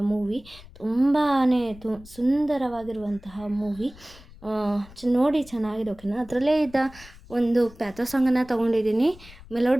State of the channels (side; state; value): left; noise; rumble, 21 dB below the sound